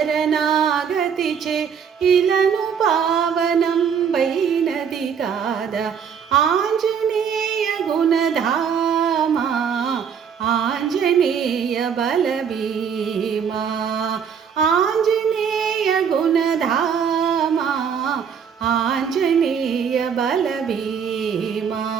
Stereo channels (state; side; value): quieter; left; 7.2 dB